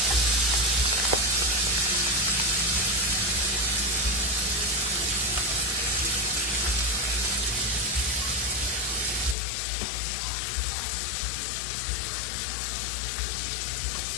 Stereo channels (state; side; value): drops out; right; at 9.3 s